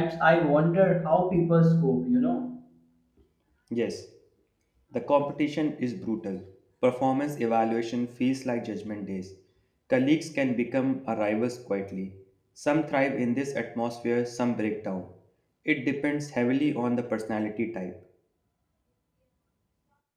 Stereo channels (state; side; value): identical; both; correlation 1.00